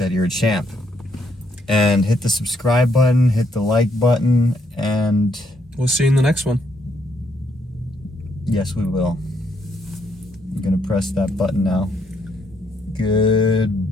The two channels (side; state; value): both; normal; correlation 0.74